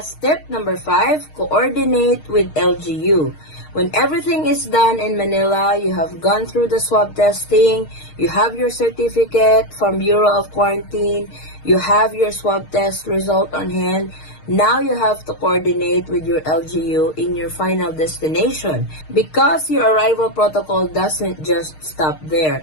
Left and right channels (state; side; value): late; right; 6.5 ms